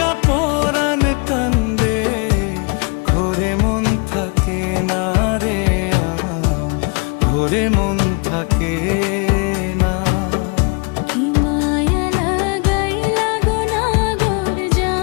পরাণ কান্দে, ঘরে মন থাকে না রে, ঘরে মন থাকে না।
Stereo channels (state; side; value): quieter; right; 33.6 dB